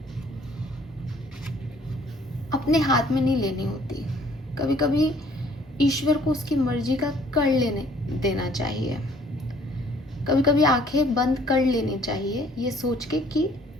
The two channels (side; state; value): both; normal; correlation 0.58